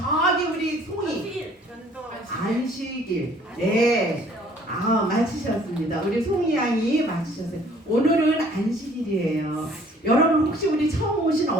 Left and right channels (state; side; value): normal; both; correlation 0.57